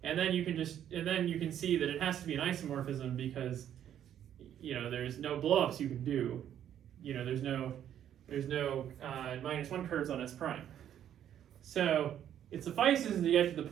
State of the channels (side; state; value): left; quieter; 10.3 dB